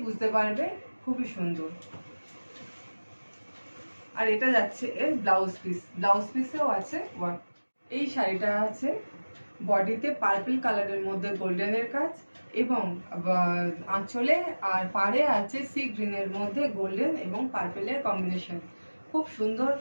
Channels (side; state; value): both; inverted; correlation -1.00